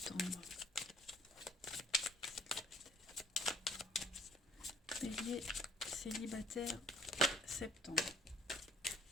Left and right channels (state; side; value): normal; both; correlation 0.58